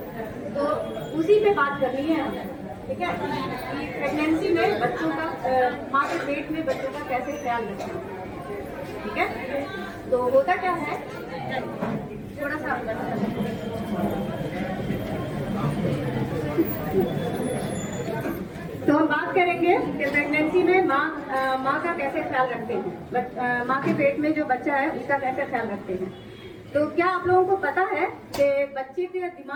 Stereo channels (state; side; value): identical; both; correlation 1.00